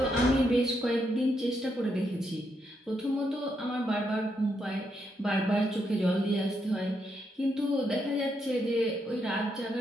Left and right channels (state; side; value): normal; both; correlation 0.79